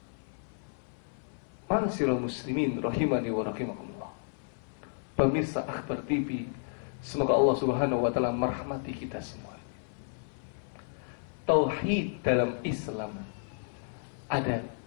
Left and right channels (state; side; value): silent; right; 57 dB below the other